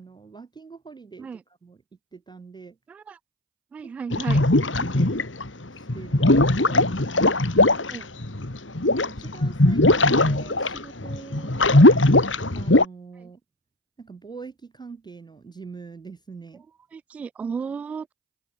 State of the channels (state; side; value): normal; both; correlation 0.24